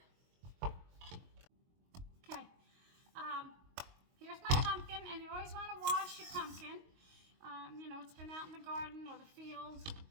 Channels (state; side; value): late; left; 22 ms